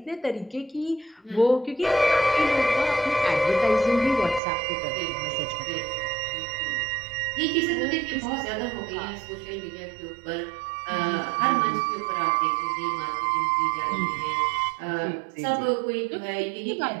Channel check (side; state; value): left; drops out; at 4.4 s